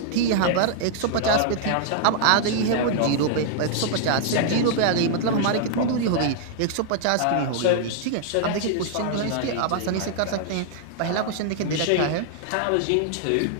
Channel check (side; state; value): both; different; correlation -0.01